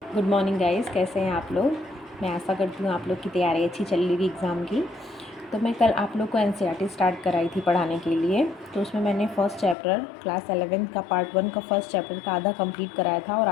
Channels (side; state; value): right; drops out; at 9.8 s